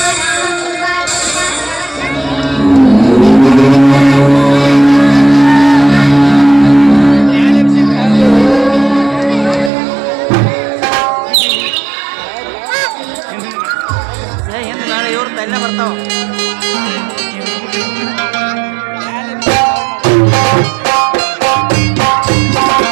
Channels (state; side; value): drops out; left; at 9.7 s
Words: ನಾಳೆ ಇವ್ರು ತಲೆ ಬರ್ತಾವ.